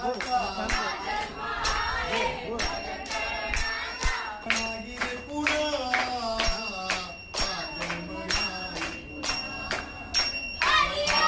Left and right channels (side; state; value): both; identical; correlation 1.00